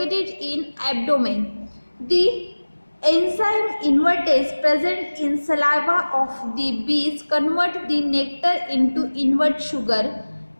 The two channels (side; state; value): both; inverted; correlation -1.00